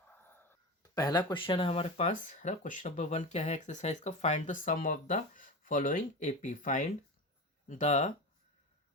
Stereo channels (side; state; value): both; normal; correlation 0.25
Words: पहला क्वेश्चन है हमारे पास, है ना। क्वेश्चन नंबर 1 क्या है एक्सरसाइज का? Find the sum of the following AP. Find the